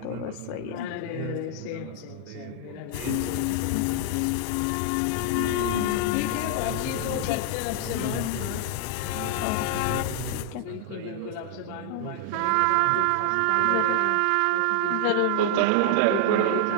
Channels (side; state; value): both; different; correlation -0.01